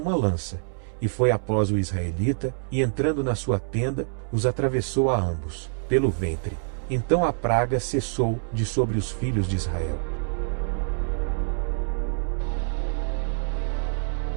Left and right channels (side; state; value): left; silent; 61 dB below the other